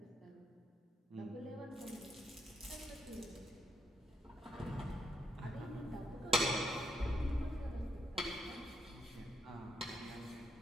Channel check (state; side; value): normal; both; correlation 0.78